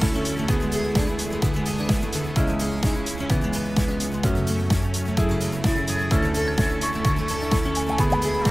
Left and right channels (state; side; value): noise; right; rumble, 12 dB below the sound